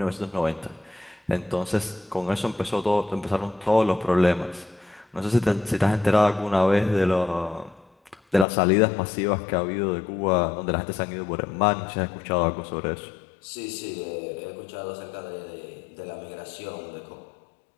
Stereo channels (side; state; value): right; drops out; at 8.5 s